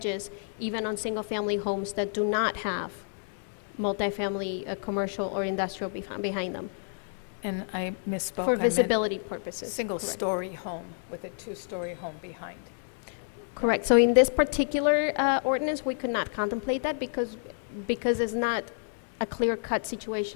even on single-family homes that do not have multifamily, commercial or industrial behind them, And I misspoke. for I meant visibility purposes. Correct. Single-story home with a 2-story home behind. Correct. So in this particular ordinance, we could not contemplate that because it's not a clear-cut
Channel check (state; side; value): silent; right; digital silence